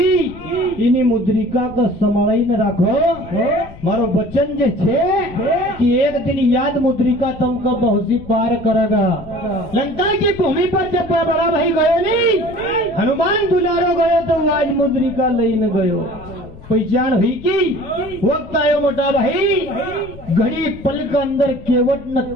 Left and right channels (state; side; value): noise; left; rumble, 18 dB below the sound